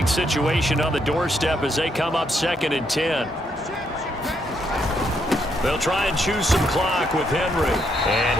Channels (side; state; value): both; normal; correlation 0.75